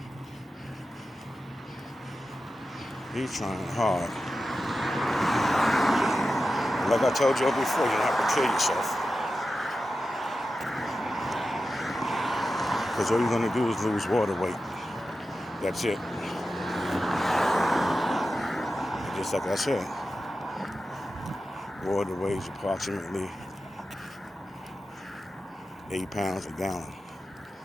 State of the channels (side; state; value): both; normal; correlation 0.92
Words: He's trying hard. Like I told you before, you don't have to kill yourself. Because all you're going to do is lose water weight. That's it. Just like I said, water weighs approximately 8 pounds a gallon.